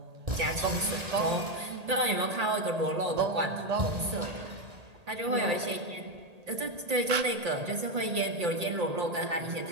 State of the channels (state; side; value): late; left; 1.8 ms